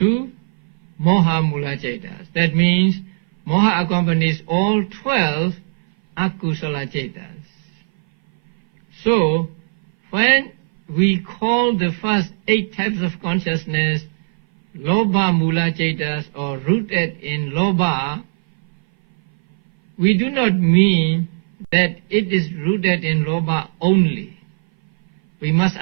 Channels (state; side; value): silent; left; 59 dB below the other